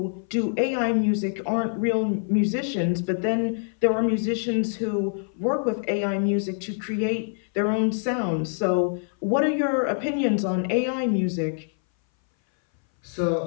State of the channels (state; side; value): silent; right; 60 dB below the other